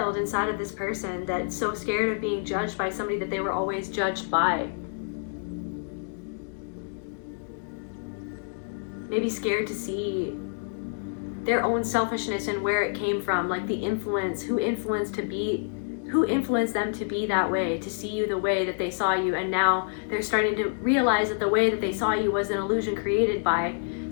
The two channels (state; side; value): silent; right; digital silence